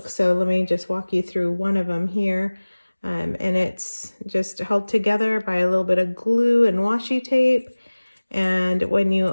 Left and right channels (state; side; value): inverted; both; correlation -1.00